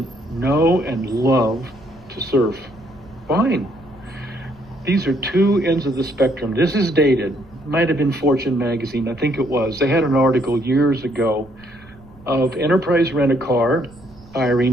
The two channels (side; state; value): right; noise; rumble, 23 dB below the sound